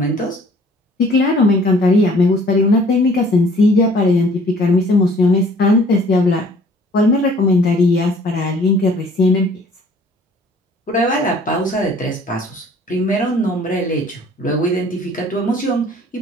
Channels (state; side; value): normal; both; correlation 0.55